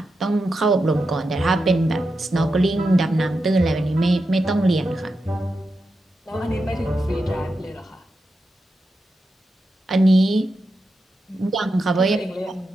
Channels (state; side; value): normal; both; correlation 0.88